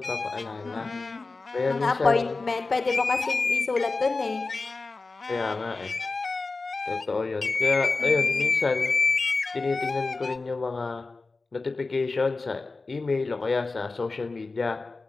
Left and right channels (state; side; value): quieter; right; 3.7 dB